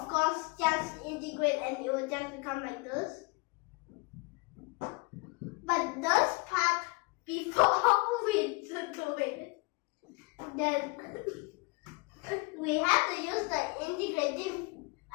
course just integrate and it will just become like this. But this part, before we do it, then we have to use the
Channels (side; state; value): right; quieter; 27.1 dB